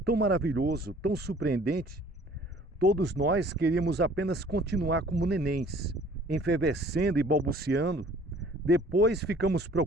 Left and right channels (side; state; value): both; normal; correlation 0.53